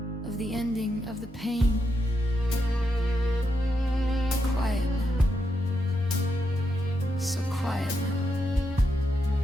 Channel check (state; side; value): normal; both; correlation 0.83